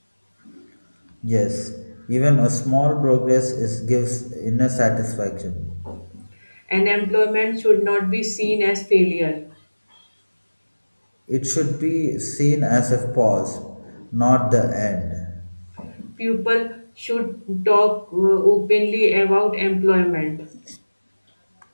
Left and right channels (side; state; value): both; inverted; correlation -1.00